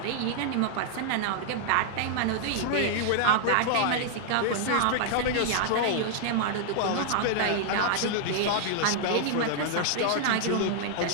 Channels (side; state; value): both; different; correlation -0.01